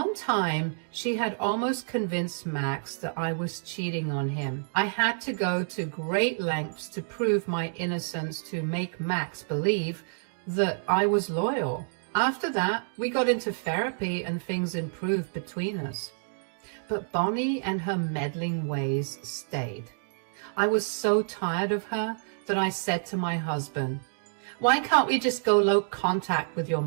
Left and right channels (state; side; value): silent; left; digital silence